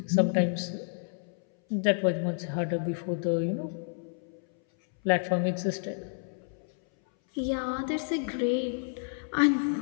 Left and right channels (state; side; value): silent; right; 58 dB below the other